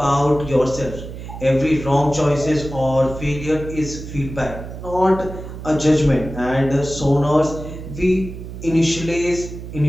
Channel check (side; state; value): right; noise; hum, 10 dB below the sound